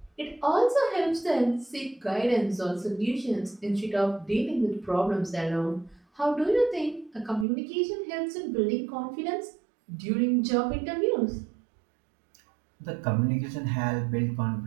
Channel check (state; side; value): drops out; left; at 7.5 s